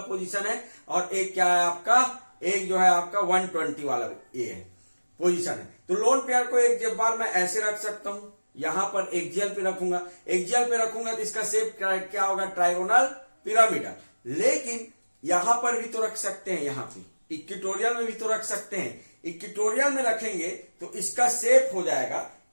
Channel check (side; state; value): both; inverted; correlation -1.00